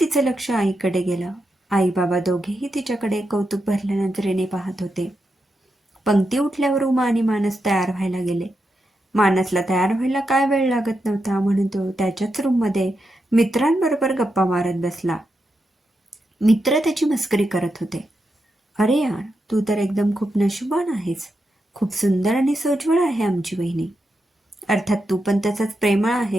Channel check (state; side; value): normal; both; correlation 0.86